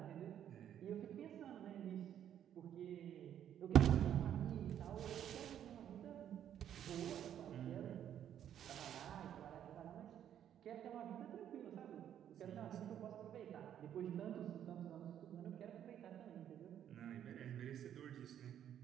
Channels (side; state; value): left; quieter; 10.1 dB